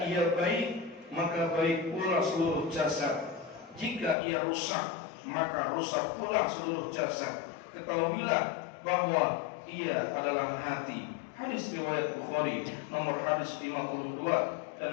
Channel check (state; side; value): drops out; right; at 4.2 s